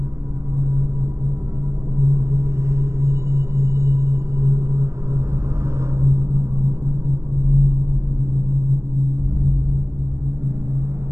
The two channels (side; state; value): left; late; 0.14 ms